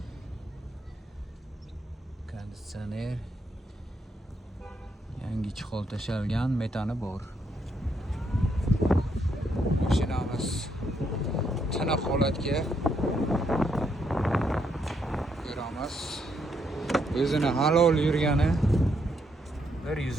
Konditsioner yangi chihol tashalgan, metani bor. Mashinamiz tiniq holatga ko'ramiz. O'zini halol yurgani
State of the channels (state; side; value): normal; both; correlation 0.76